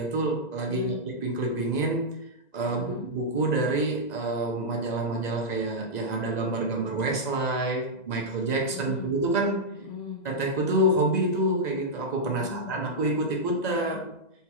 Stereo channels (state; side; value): late; right; 2.0 ms